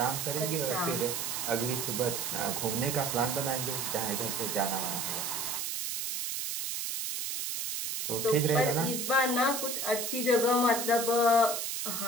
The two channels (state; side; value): noise; right; hiss, 2 dB below the sound